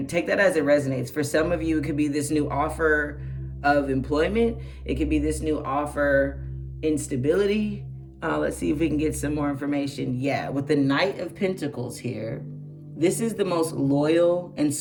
take that as it resonates. For some of you, it could be this new offer of employment. It could be this new offer instability. Let's see if we can get some more information. Yeah, with the Knight of Pentacles here, this is the most loyal and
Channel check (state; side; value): identical; both; correlation 1.00